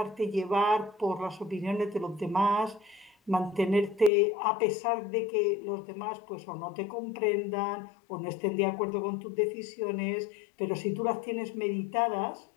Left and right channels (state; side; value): drops out; right; at 4.1 s